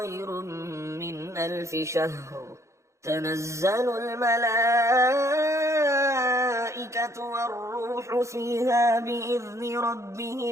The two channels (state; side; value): late; left; 0.14 ms